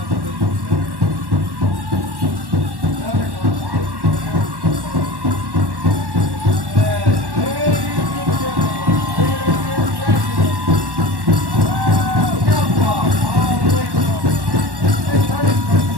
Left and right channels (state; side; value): late; left; 1.1 ms